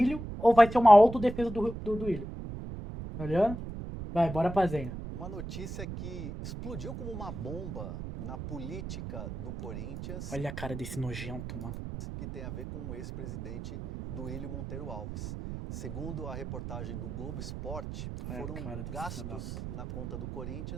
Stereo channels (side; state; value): right; noise; rumble, 8 dB below the sound